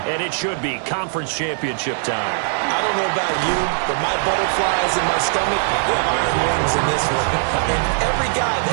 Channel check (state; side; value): silent; left; digital silence